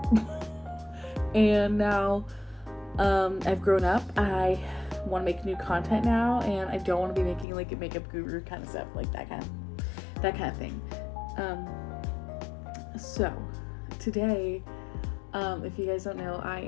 And now I've grown up. I want to make new content now, and I don't want to be making like a makeup guru kind of stuff, like that kind of thing. So today, if you guys don't know, I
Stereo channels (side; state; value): right; drops out; at 7.5 s